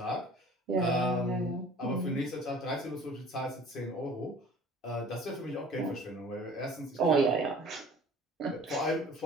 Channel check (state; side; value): normal; both; correlation 0.47